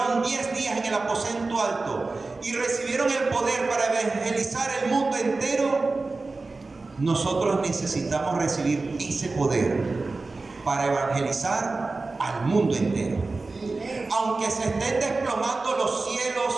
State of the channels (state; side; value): quieter; left; 3.6 dB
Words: 10 días en el aposento alto y recibieron el poder para evangelizar el mundo entero, nosotros necesitamos recibir ese poder para evangelizar al mundo entero. Aunque se estén desplomando los